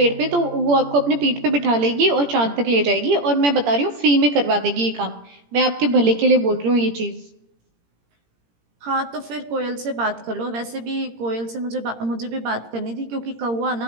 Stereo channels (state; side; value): late; left; 17 ms